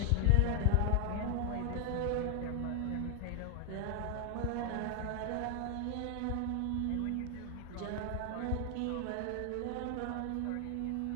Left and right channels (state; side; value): different; both; correlation 0.00